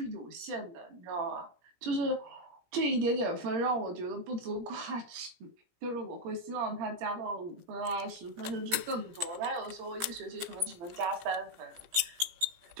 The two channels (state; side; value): late; left; 17 ms